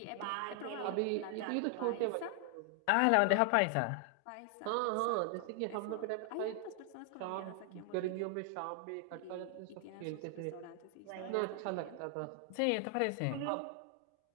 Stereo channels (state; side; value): different; both; correlation 0.00